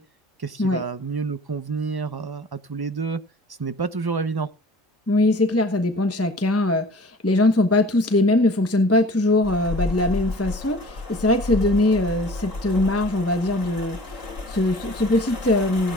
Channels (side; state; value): both; normal; correlation 0.46